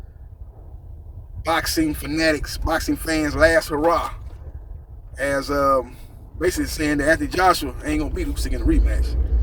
boxing fanatics, boxing fans' last hurrah. As basically saying that Anthony Joshua ain't gonna beat Usyk in the rematch.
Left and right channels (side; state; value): both; identical; correlation 1.00